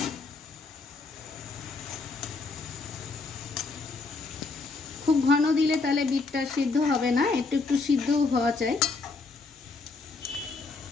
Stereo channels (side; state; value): right; quieter; 4.0 dB